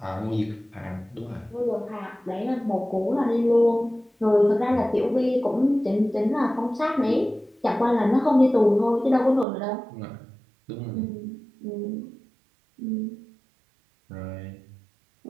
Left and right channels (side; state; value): left; drops out; at 9.5 s